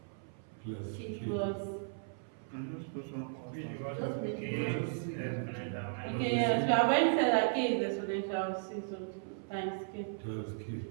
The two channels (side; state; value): left; silent; 54 dB below the other